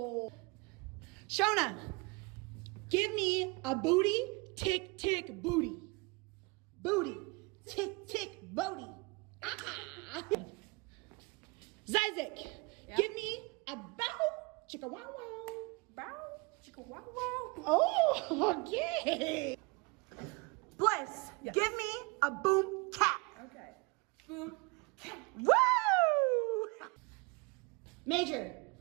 Shona, give me a booty tick tick booty. Booty tick tick booty. Ah. Zizek, give me a bow chicka wow wow. Bow, chicka wow wow. Oh, okay. Bliss, Yes. give me a boom cat. Okay. Boom cat. Woo! Major,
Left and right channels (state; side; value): quieter; left; 27.8 dB